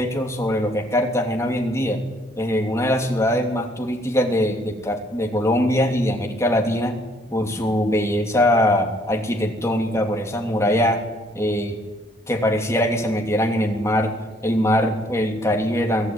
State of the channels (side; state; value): both; normal; correlation 0.64